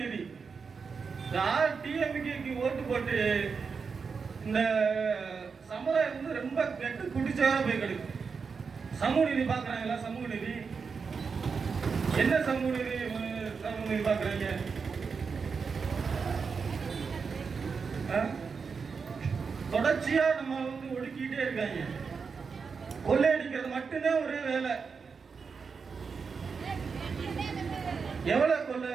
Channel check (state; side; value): quieter; left; 5.4 dB